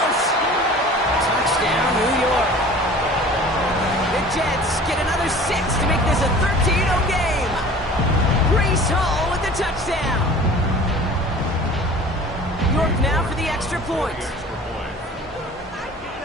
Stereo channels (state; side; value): normal; both; correlation 0.43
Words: Touchdown, New York. The Jets get another 6 to make this a 13-0 game. Breece Hall with the touchdown. York now for the extra point.